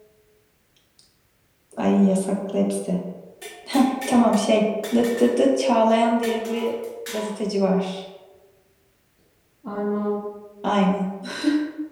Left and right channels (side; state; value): both; identical; correlation 1.00